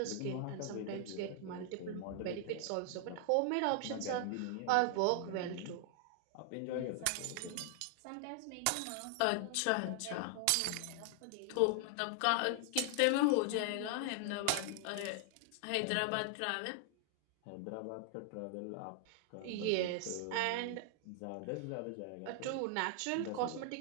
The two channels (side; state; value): both; different; correlation 0.00